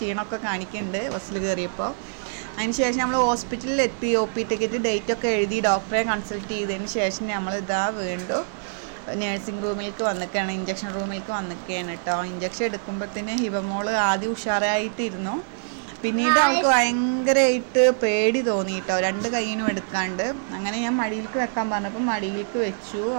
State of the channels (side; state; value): left; silent; 62 dB below the other